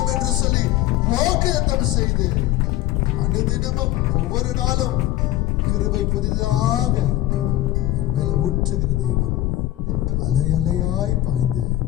என்று சொல்லி வாக்குத்தத்தம் செய்து அனுதினமும் ஒவ்வொரு நாளும் கிருபை புதிதாக என் மேல ஊற்றுகிற தேவன், அலை அலையாய் பாய்ந்து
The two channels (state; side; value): quieter; right; 15.4 dB